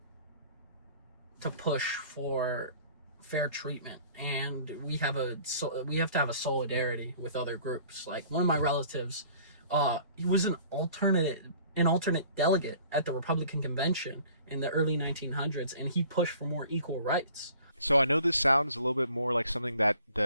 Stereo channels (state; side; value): inverted; both; correlation -0.51